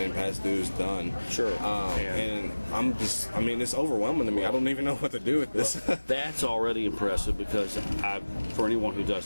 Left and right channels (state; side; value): inverted; both; correlation -1.00